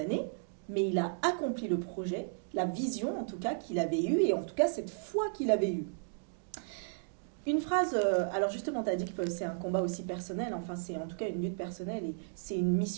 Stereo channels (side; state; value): left; silent; digital silence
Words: mais il a accompli le projet, la vision en tout cas qu'il avait eue, et en tout cas cette foi qu'il avait eue. Une phrase, alors justement tu as dit que c'est un combat aussi personnel, enfin c'est en tout cas une lutte personnelle, et c'est une